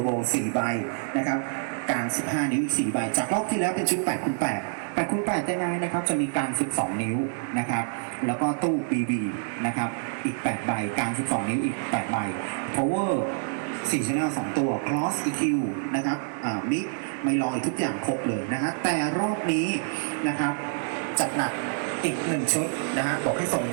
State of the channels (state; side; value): silent; left; digital silence